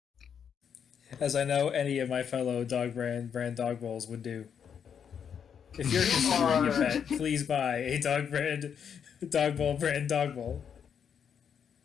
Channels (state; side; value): quieter; right; 7.6 dB